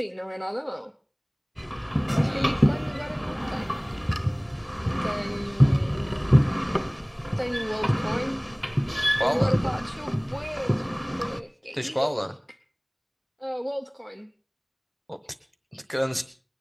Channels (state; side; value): identical; both; correlation 1.00